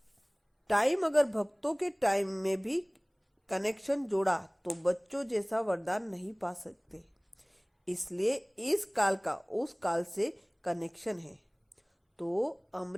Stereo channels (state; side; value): identical; both; correlation 1.00